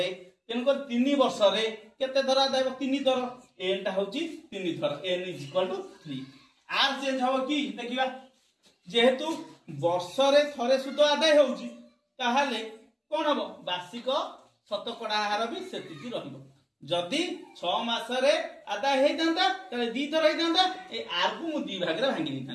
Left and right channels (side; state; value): both; identical; correlation 1.00